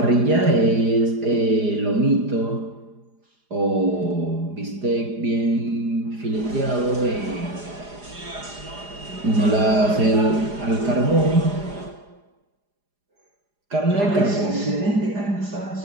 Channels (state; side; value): late; left; 4.9 ms